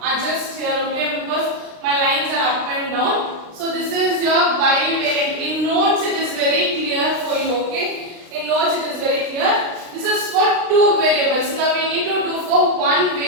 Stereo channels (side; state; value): left; late; 36 ms